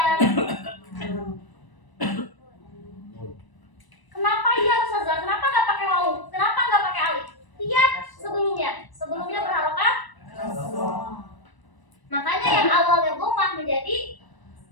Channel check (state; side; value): late; right; 1.0 ms